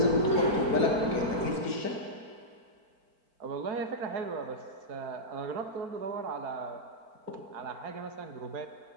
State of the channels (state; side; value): late; left; 4.5 ms